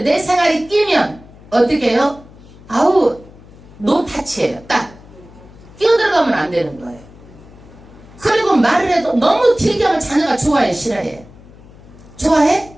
내 생활이 끼면 어떻게 해요? 아우 노타치예요. 딱 끼어들어가면 안 되는 거예요. 그리고 말을 해도 너무 길게 하면 자녀가 좋아해 싫어해? 좋아해?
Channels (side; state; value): left; noise; hum, 22 dB below the sound